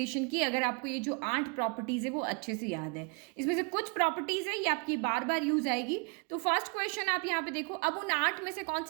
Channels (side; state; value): left; quieter; 31.6 dB